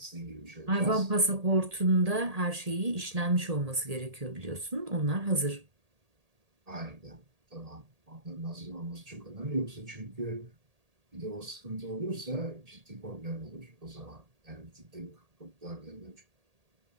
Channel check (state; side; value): late; left; 1.8 ms